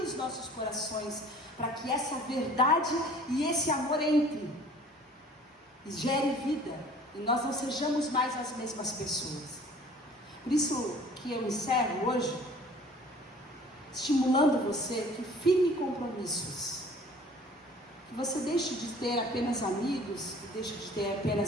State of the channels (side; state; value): both; normal; correlation 0.50